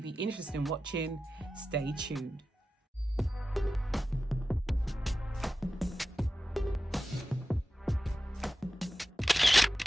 be interested in watching, stay tuned.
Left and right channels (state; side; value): normal; both; correlation 0.93